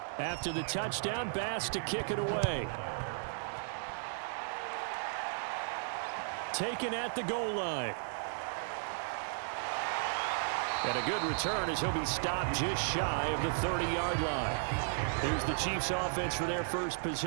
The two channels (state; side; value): silent; left; digital silence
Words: After the touchdown, Bass to kick it away. Taken at the goal line. And a good return as he'll be stopped just shy of the 30-yard line. Here's the Chiefs offense for their first